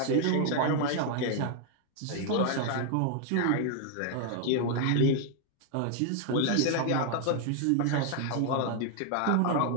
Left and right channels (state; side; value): different; both; correlation 0.00